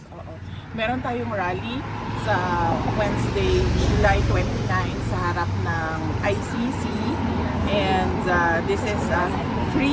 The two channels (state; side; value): identical; both; correlation 1.00